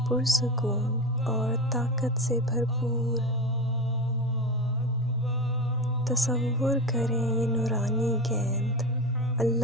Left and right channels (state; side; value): normal; both; correlation 0.23